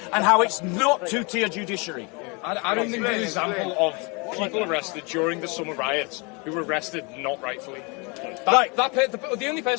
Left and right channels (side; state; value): right; quieter; 30.6 dB